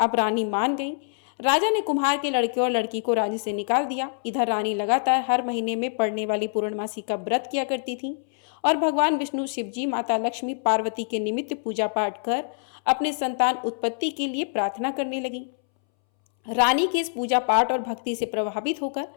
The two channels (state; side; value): silent; right; 62 dB below the other